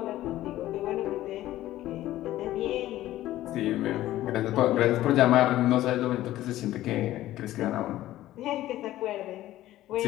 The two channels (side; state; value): right; quieter; 14.7 dB